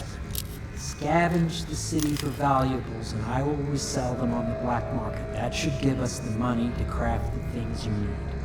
Scavenge the city for valuables and I will resell them on the black market. That should give us the money to craft the things you need.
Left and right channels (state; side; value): identical; both; correlation 1.00